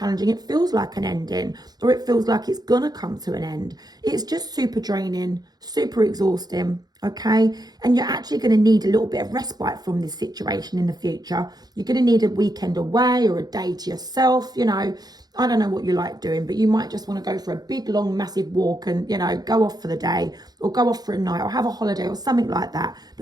It feels like an ending, or it feels like it's going to come to an end. It's just super draining, super exhausting, okay? And you're actually going to need a little bit of respite from this situation in the future. You're going to need a weekend away or a day to yourself, you know. I don't know what you like doing, but you might just want to go for a big, long, massive walk and, you know, go off for the day or go off for a night or have a holiday or something like that.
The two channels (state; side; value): late; left; 0.19 ms